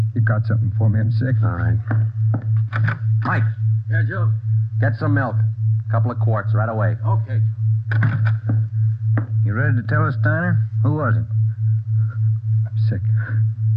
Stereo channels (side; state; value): both; identical; correlation 1.00